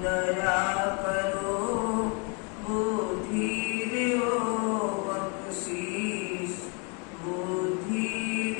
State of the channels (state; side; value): quieter; right; 33.2 dB